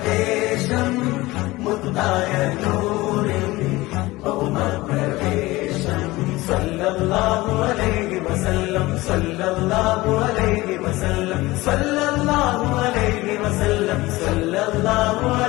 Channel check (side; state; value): right; quieter; 19.8 dB